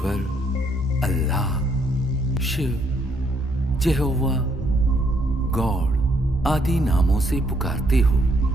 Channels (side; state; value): both; normal; correlation 0.71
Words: अल्लाह, शिव, यहोवा, गॉड आदि नामों से पुकारते हो।